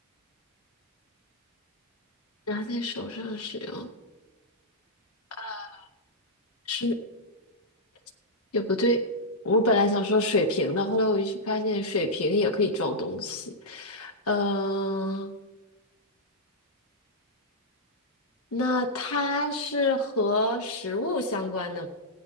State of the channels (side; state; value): both; normal; correlation -0.07